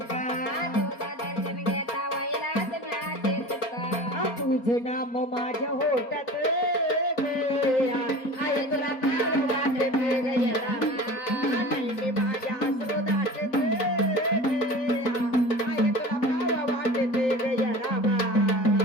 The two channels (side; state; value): right; late; 4.3 ms